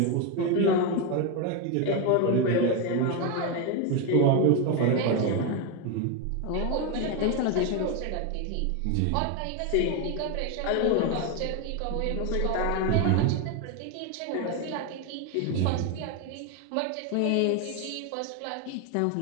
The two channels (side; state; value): both; different; correlation 0.02